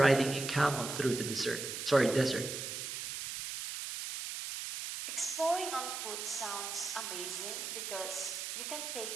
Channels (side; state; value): right; noise; hiss, 5 dB below the sound